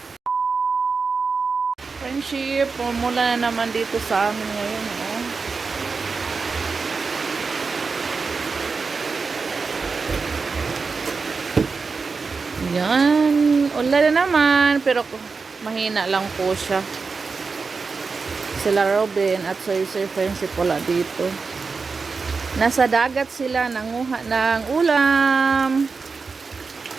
Friendship, mula na naman dito sa amin ngayon. Oh. Yan. Ulan na naman. Pero mahina lang po siya. Sila Robin at Soy friendship wala dito. Nasa dagat sila. Nanguha ng ulam.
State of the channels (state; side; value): quieter; left; 4.7 dB